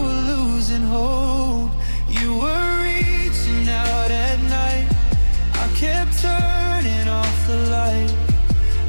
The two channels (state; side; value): inverted; both; correlation -1.00